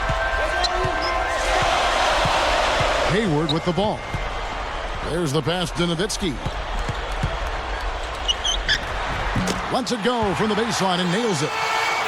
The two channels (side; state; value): both; identical; correlation 1.00